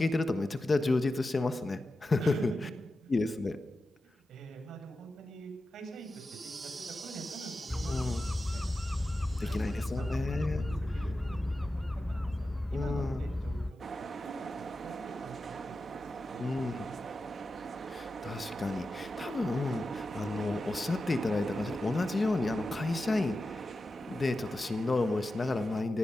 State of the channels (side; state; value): both; normal; correlation 0.92